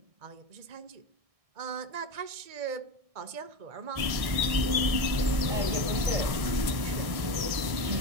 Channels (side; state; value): left; late; 1.6 ms